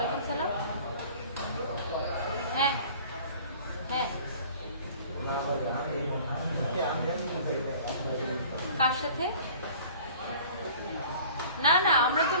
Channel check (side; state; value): both; inverted; correlation -0.47